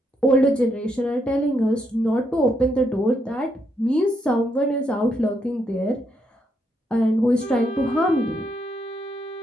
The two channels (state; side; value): normal; both; correlation 0.77